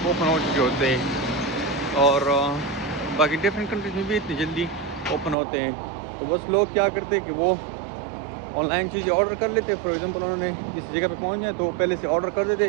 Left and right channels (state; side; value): drops out; left; at 5.4 s